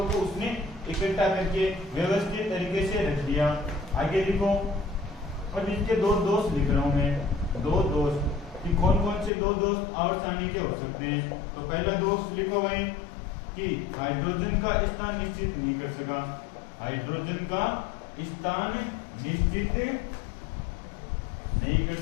को उसने इकट्ठा करके व्यवस्थित तरीके से रख दिया। आगे लिखो, और इसके दो दोष लिख रहा हूं मैं, दो दोष कि कौन कौन से दो दोष आवर्त सारणी के हो सकते हैं। तो पहला दोष लिखो भाई कि हाइड्रोजन का स्थान निश्चित नहीं कर सका, हाइड्रोजन का स्थान निश्चित नहीं कर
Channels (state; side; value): drops out; right; at 9.3 s